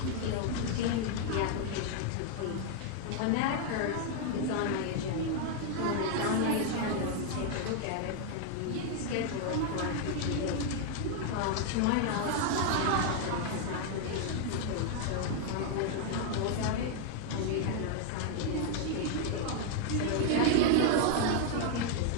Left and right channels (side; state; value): both; different; correlation 0.00